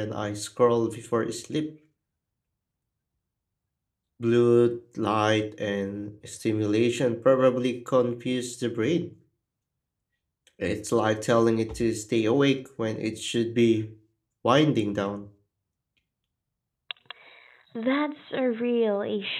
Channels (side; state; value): both; identical; correlation 1.00